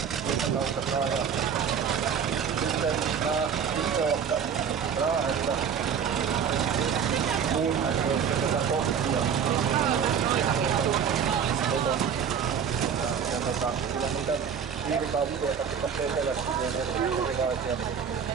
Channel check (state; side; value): quieter; left; 7.3 dB